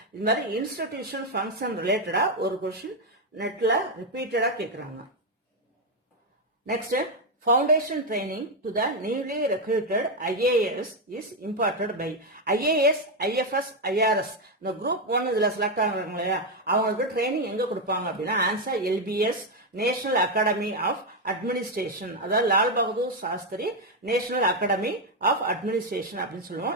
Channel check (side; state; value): both; normal; correlation 0.05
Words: இது மாதிரி institution function related ஒரு question நெட்ல repeated கேக்குறாங்க. Next, foundation training to the newly recruited IAS is imparted by IAS, IFS, IRS. இந்த group 1 இதுல select ஆகுறாங்க இல்லையா, அவங்களுக்கு ட்ரைனிங் எங்க கொடுப்பாங்க அப்படின்னா ஆன்சர் LBS, national academy of administration. அதாவது Lal Bahadur Shastri national academy of administration அப்படின்னு